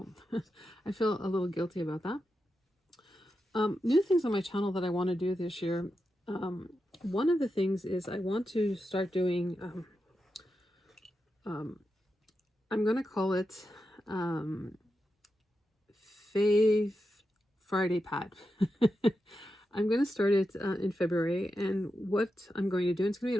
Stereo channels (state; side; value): normal; both; correlation 0.88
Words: I feel a little guilty about that. New things on my channel that I want to do this year. One of the things is I want to start doing, I'm going to call it Fave Friday Pad. I'm going to start it in February, and what I'm going to do, it's going to